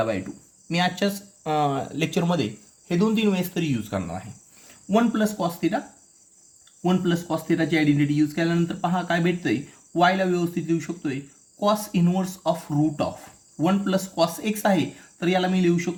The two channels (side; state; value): both; identical; correlation 1.00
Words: बाय 2. मी आजच्याच लेक्चरमध्ये हे 2-3 वेळेस तरी यूज करणार आहे. 1 प्लस कॉस थिटाची आयडेंटिटी यूज केल्यानंतर पहा काय भेटतंय. वायला व्यवस्थित लिहू शकतोय cos inverse of root of 1 plus cos x आहे तर याला मी लिहू